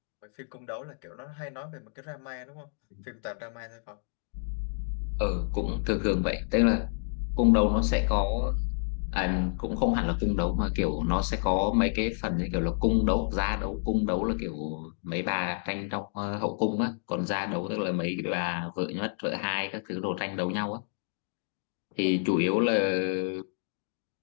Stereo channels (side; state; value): right; silent; digital silence